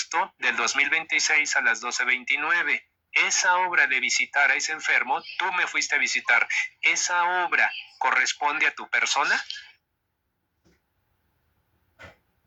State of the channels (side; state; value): both; identical; correlation 1.00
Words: del 2026 a las 12:29. Esa obra de visitar a ese enfermo, tú me fuiste a visitar. ¿Esa obra corresponde a tu persona?